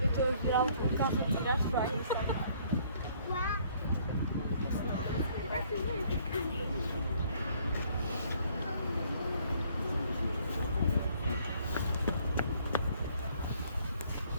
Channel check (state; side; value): inverted; both; correlation -0.62